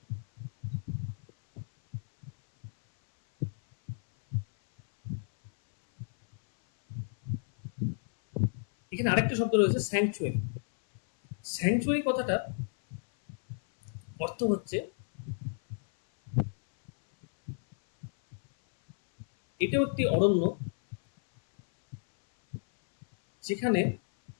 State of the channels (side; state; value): right; silent; 57 dB below the other